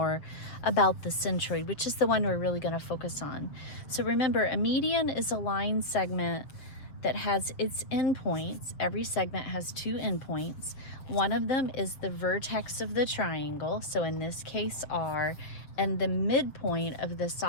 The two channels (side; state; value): right; late; 7.1 ms